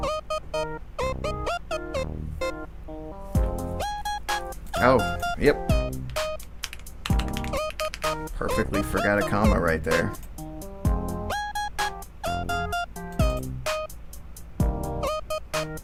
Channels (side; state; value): both; identical; correlation 1.00